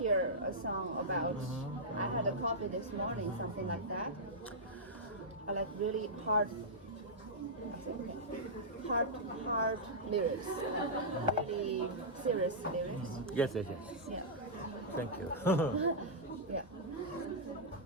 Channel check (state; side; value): normal; both; correlation -0.11